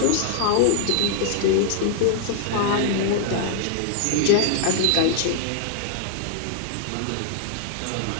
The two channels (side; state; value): both; different; correlation 0.00